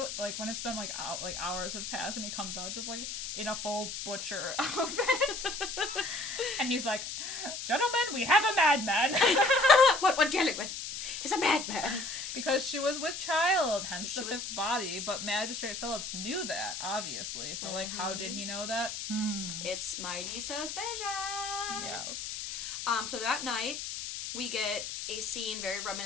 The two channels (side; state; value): left; noise; hiss, 6 dB below the sound